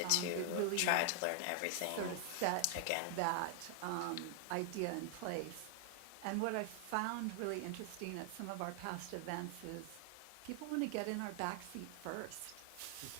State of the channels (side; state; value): both; different; correlation 0.00